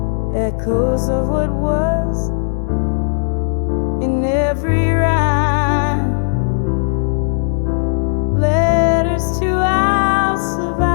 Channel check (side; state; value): right; silent; digital silence